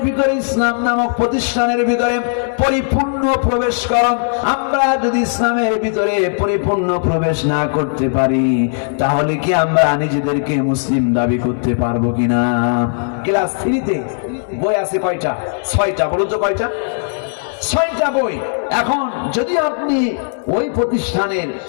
ভিতরে, ইসলাম নামক প্রতিষ্ঠানের ভিতরে পরিপূর্ণ প্রবেশ করো। আমরা যদি ইসলামের ভিতরে পরিপূর্ণ প্রবেশ না করতে পারি, তাহলে কি আমরা নিজেদেরকে মুসলিম দাবি করতে পারবো কিনা? ক্লাস 3-তে বই আছে কয়টা? 6টা। বলুন তো কয়টা? 6টা বই। এখন যদি আপনি ওই প্রতিষ্ঠানের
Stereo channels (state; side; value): silent; right; digital silence